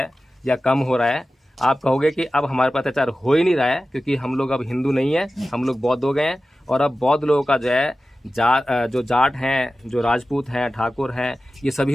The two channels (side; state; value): both; normal; correlation 0.95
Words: या कम हो रहा है। आप कहोगे कि अब हमारे पास अत्याचार हो ही नहीं रहा है, क्योंकि हम लोग अब हिंदू नहीं है, हम लोग बौद्ध हो गए हैं। और अब बौद्ध लोगों का जो है जो जाट हैं, जो राजपूत हैं, ठाकुर हैं, ये